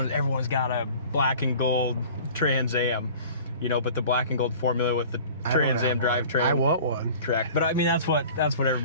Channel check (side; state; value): both; inverted; correlation -0.44